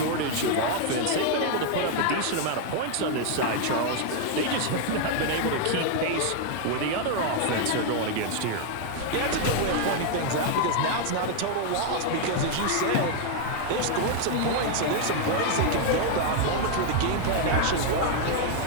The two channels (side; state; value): both; different; correlation 0.00